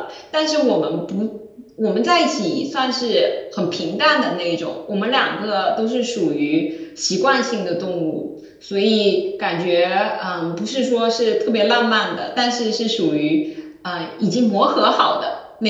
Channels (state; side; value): identical; both; correlation 1.00